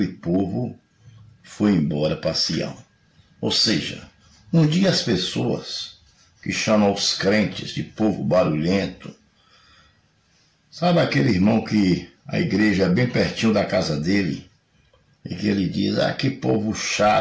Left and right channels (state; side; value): identical; both; correlation 1.00